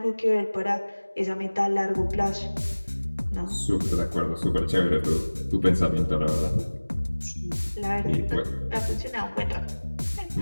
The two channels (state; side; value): inverted; both; correlation -1.00